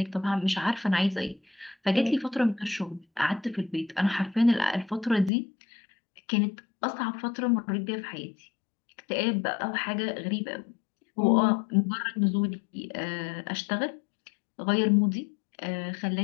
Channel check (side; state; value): right; drops out; at 5.3 s